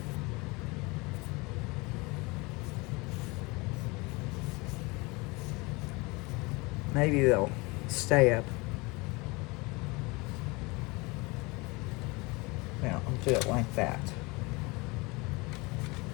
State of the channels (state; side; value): quieter; right; 25.6 dB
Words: Maybe they'll stay up. Now I'll do it like that.